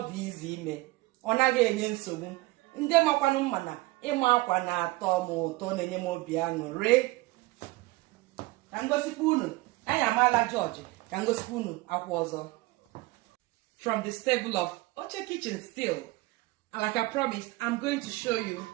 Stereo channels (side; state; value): left; quieter; 20.9 dB